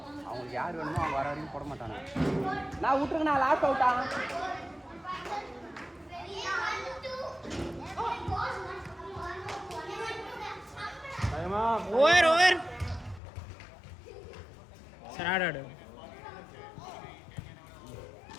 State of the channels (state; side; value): drops out; right; at 13.2 s